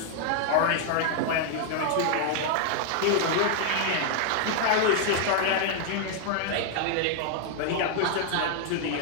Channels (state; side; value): different; both; correlation -0.01